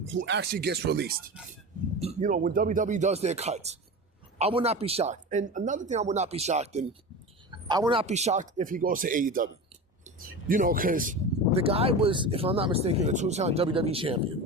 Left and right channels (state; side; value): normal; both; correlation 0.28